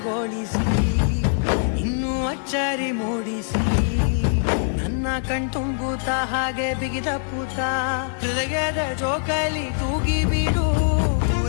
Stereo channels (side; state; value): right; silent; 64 dB below the other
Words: ಇನ್ನೂ ಅಚ್ಚರಿ ಮೂಡಿಸಿ ನನ್ನ ಕಣ್ತುಂಬುತ್ತ ಹಾಗೆ ಬಿಗಿದ ಪೂತ ಹೃದಯದ ಜೋಕಾಲಿ ತೂಗಿ ಬಿಡು